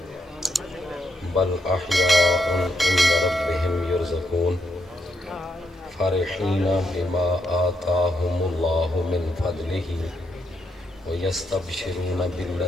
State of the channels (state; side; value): normal; both; correlation 0.79